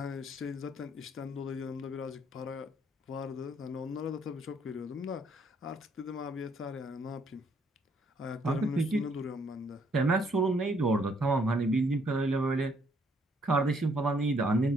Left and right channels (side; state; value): both; normal; correlation 0.68